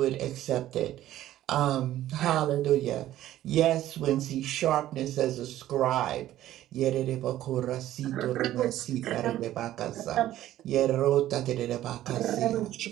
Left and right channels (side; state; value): left; quieter; 13.5 dB